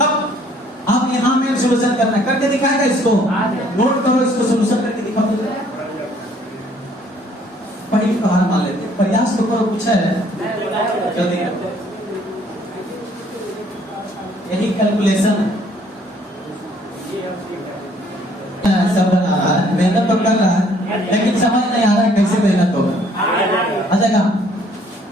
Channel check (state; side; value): normal; both; correlation 0.61